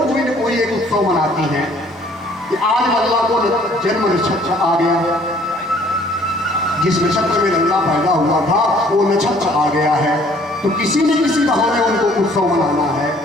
न कोई एक उत्सव मनाती हैं कि आज लल्ला को जन्म नक्षत्र आ गया, जिस नक्षत्र में लल्ला पैदा हुआ था वो नक्षत्र आ गया है, तो किसी न किसी बहाने उनको उत्सव मनाना है।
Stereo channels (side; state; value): both; normal; correlation 0.58